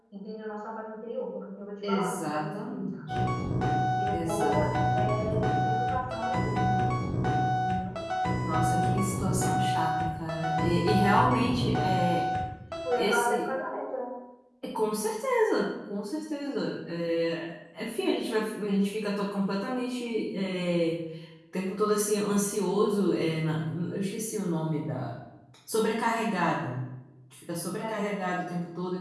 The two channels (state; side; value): identical; both; correlation 1.00